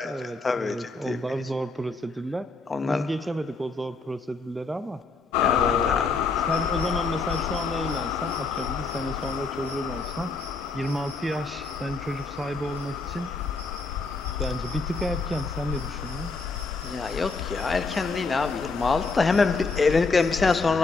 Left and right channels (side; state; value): right; quieter; 4.0 dB